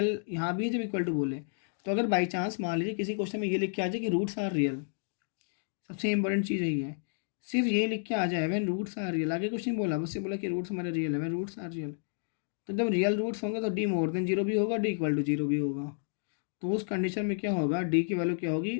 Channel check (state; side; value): silent; right; digital silence